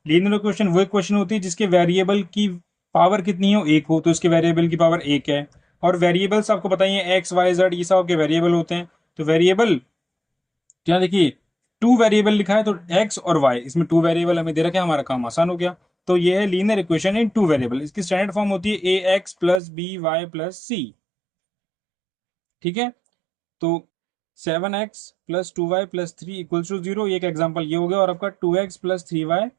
लीनियर इक्वेशन वो इक्वेशन होती है जिसके वेरिएबल की पावर कितनी हो? एक हो। तो इसके वेरिएबल की पावर एक है। और वेरिएबल्स आपको बताइए एक्स वाई जेड, ये सब आपके वेरिएबल होते हैं। तो वेरिएबल क्या, देखिए टू वेरिएबल लिखा है तो एक्स और वाई, इसमें टू वेरिएबल हमें दे रखा है, हमारा काम आसान हो गया। तो ये है linear equation in two variable. इसकी स्टैंडर्ड फॉर्म होती है ax+by+c। ठीक है, तो 7x+2y+3 इक्वल्स टू 0, एक एग्जाम्पल ये हो गया। और आपका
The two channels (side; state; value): left; drops out; at 19.6 s